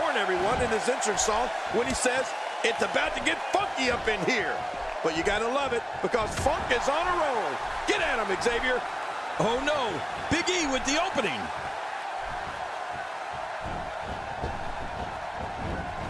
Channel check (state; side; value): identical; both; correlation 1.00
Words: everyone in his entrance song when he says, "It's about to get funky up in here." But you gotta love it, because Funk is on a roll. Get at him, Xavier. Oh no, Big E with the opening.